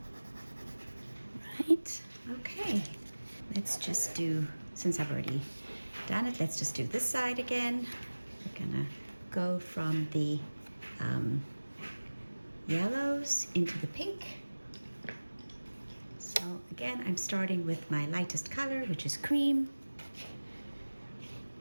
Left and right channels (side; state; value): both; inverted; correlation -1.00